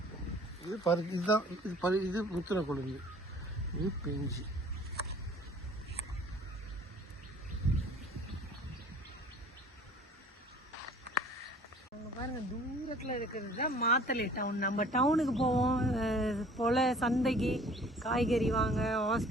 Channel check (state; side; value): normal; both; correlation 0.51